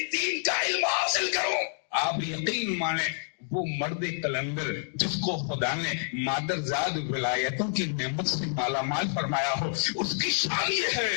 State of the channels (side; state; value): right; silent; digital silence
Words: دین کا علم حاصل کروں. آپ یقین مانیں وہ مرد کلندر جس کو خدا نے مادر زاد ولایتوں کی نعمت سے مالا مال فرمایا ہو، اس کی شان یہ